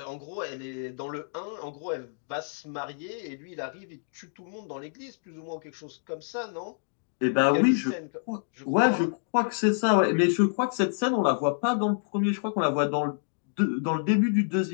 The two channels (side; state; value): right; silent; digital silence